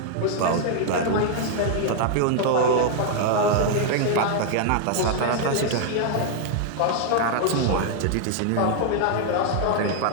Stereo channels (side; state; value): both; different; correlation 0.00